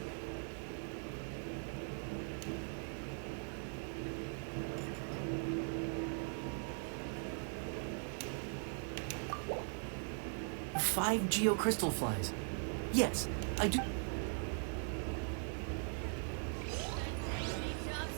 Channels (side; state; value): left; silent; 51 dB below the other